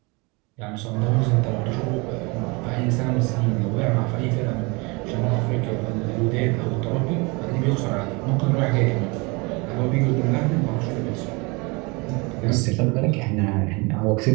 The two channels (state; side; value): quieter; left; 27.7 dB